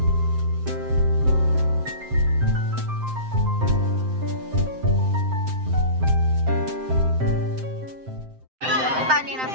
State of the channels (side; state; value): left; late; 7.7 ms